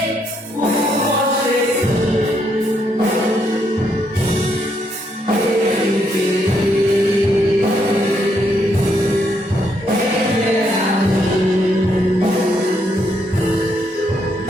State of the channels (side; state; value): both; normal; correlation 0.75